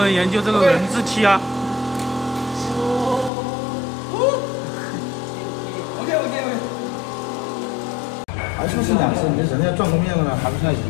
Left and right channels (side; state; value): right; drops out; at 3.3 s